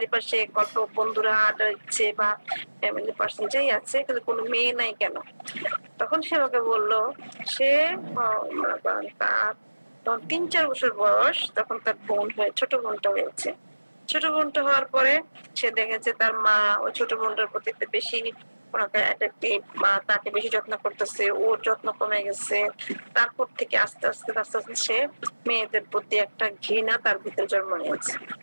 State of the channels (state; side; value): inverted; both; correlation -1.00